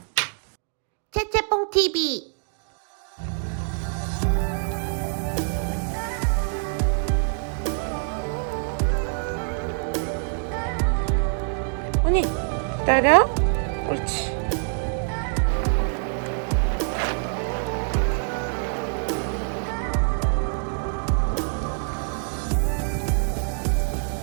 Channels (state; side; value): silent; left; 62 dB below the other